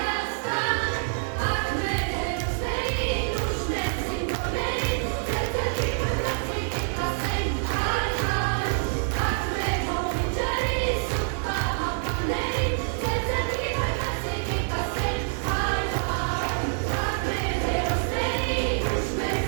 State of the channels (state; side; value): silent; left; 61 dB below the other